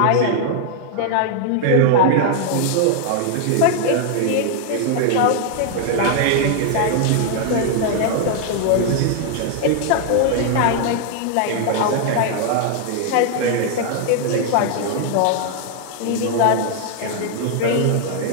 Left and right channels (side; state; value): both; different; correlation 0.00